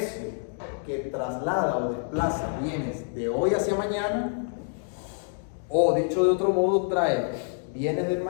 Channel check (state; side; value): silent; right; digital silence